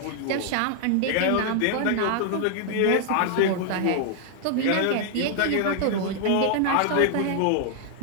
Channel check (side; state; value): both; different; correlation 0.00